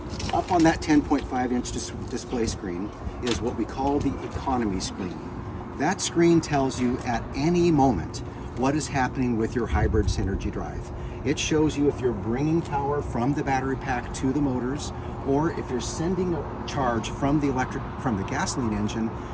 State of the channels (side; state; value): both; identical; correlation 1.00